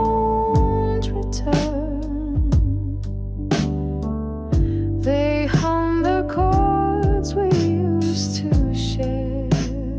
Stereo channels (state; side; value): identical; both; correlation 1.00